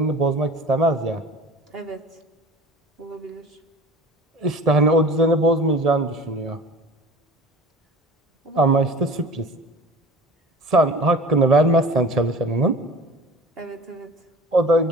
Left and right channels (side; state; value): both; normal; correlation 0.41